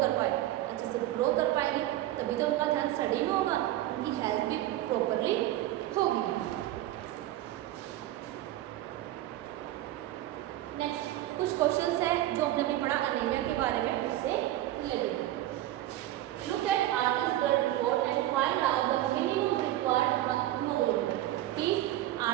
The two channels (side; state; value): left; quieter; 14.6 dB